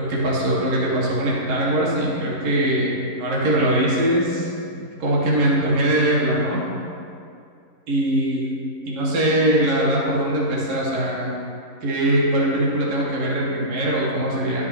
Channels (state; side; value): late; left; 11 ms